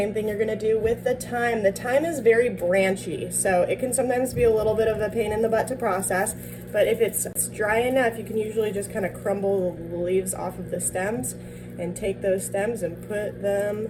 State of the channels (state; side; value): identical; both; correlation 1.00